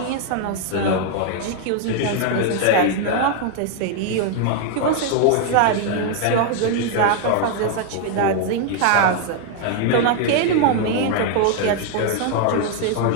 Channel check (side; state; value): both; different; correlation 0.00